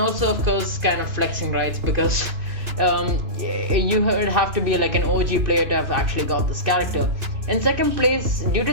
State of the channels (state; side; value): late; left; 2.9 ms